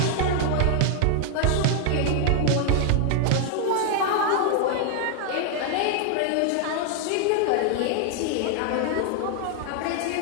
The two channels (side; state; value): both; different; correlation 0.00